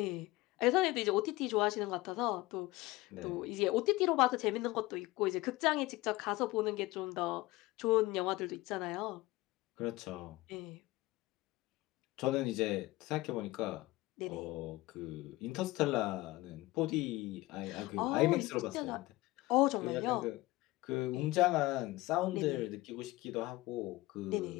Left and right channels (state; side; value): quieter; right; 19.7 dB